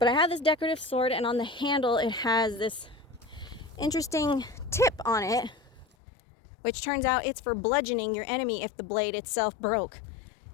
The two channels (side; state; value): right; drops out; at 5.9 s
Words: I have this decorative sword, and on the handle it has this interesting tip on it, which turns out it's for bludgeoning your enemy if the blade itself broke.